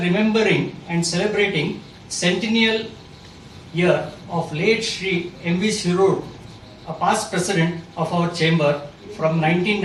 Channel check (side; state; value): both; identical; correlation 1.00